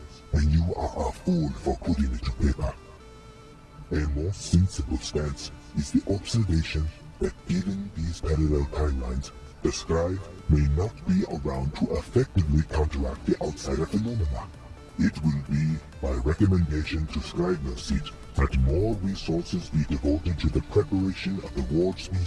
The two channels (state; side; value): identical; both; correlation 1.00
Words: and you are a fool for putting it to paper. A more sensible stance is the observation that given these parallel timelines, the Scribe may not be around to effectively counteract the outsider phenomena. It will be by recommendation to Scribe Seat that more resources be devoted to the preparation of the ward